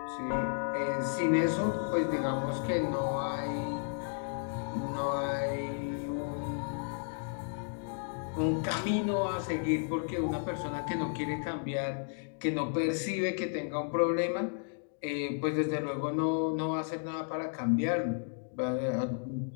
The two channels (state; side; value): silent; right; digital silence